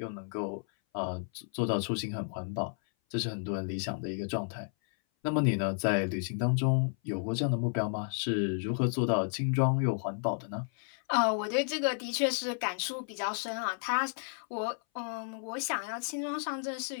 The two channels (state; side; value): silent; right; 56 dB below the other